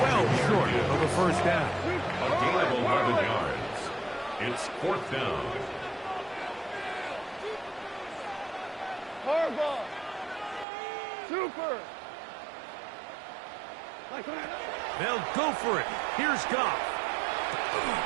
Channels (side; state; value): left; drops out; at 10.7 s